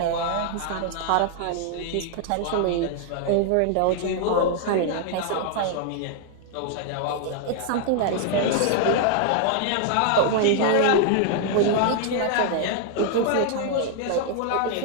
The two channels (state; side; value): different; both; correlation 0.00